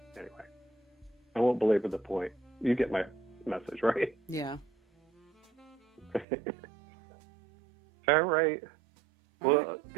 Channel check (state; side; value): drops out; left; at 6.2 s